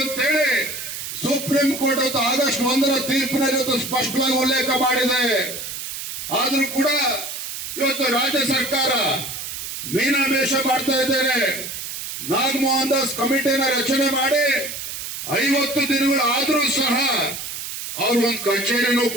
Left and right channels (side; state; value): right; noise; hiss, 7 dB below the sound